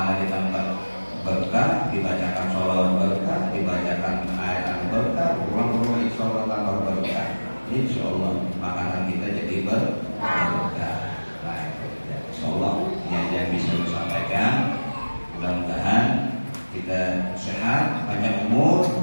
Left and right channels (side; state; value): both; inverted; correlation -1.00